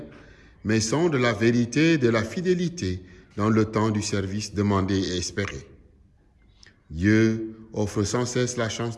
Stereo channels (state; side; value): identical; both; correlation 1.00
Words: mais sonde la vérité de la fidélité dans le temps du service demandé et espéré. Dieu offre sans cesse la chance